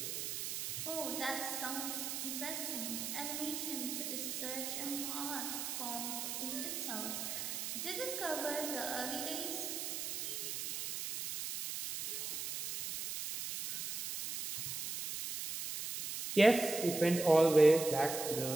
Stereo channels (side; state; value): right; noise; hiss, 4 dB below the sound